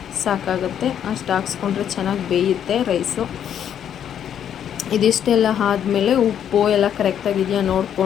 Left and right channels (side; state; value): right; quieter; 9.4 dB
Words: ಸಾಕಾಗುತ್ತೆ. ಅಷ್ಟು ಹಾಕ್ಸ್ಕೊಂಡ್ರೆ ಚೆನ್ನಾಗಿ ಬೇಯುತ್ತೆ ರೈಸು. ಇದಿಷ್ಟೆಲ್ಲ ಆದಮೇಲೆ ಉಪ್ಪು ಎಲ್ಲ ಕರೆಕ್ಟಾಗಿದೆಯಾ